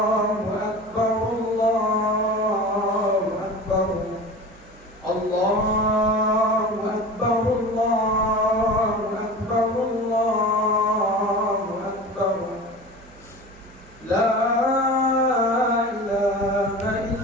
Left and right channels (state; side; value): noise; right; hum, 24 dB below the sound